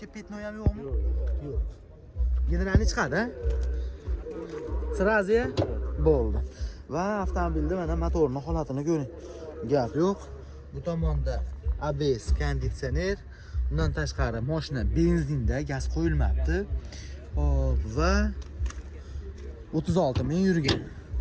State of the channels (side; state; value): both; identical; correlation 1.00